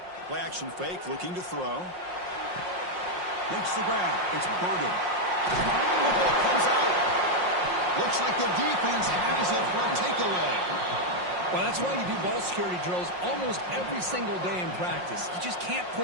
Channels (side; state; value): left; late; 5.6 ms